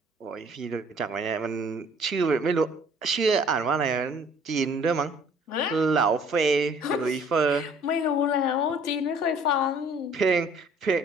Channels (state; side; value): normal; both; correlation 0.55